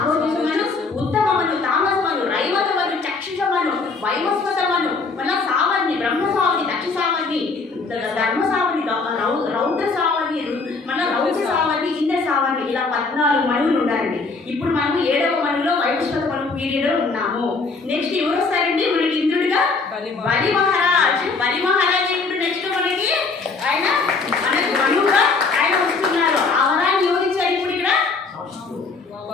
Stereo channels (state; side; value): quieter; right; 4.2 dB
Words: ఉత్తమమను, తామసమను, రైవతమను, చక్షుషమను, వైవస్వతమను, మళ్ళా సావర్ణి, బ్రహ్మ సావర్ణి, దక్ష సావర్ణి, ధర్మ సావర్ణి, రౌద్ర సావర్ణి, మళ్ళీ రౌద్ర సావర్ణి, ఇంద్ర సావర్ణి, ఇలా 14 మనువులు ఉండాలండి. ఇప్పుడు మనము 7వ మనువులో వైవస్వత మనువు పీరియడ్లో ఉన్నాము. నెక్స్ట్ ఎవరు వస్తారండి మనకి ఇంద్రుడిగా? బలి మహారాజ్. బలి మహారాజ్ ఇప్పుడు నెక్స్ట్ మనకి ఆయన మనకు మనువుగా ఆయన వస్తున్నారు. ఆ వరాన్ని ఎవరిచ్చారు ఇప్పుడు ఇక్కడ?